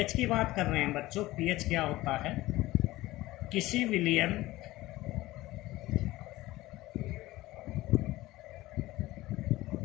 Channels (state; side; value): quieter; right; 17.9 dB